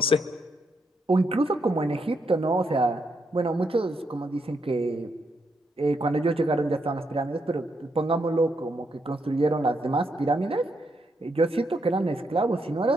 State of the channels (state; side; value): normal; both; correlation 0.79